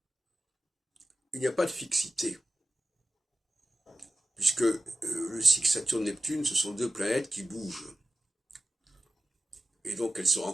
il n'y a pas de fixité, puisque le cycle Saturne-Neptune, ce sont deux planètes qui bougent. Et donc elles se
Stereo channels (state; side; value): normal; both; correlation 0.94